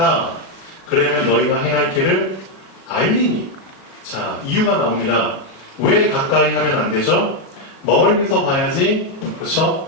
그러면 너희가 행할 길을 알리니. 자, 이유가 나옵니다. 왜 가까이 하면 안 되죠? 멀리서 봐야지.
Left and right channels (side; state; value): right; late; 37 ms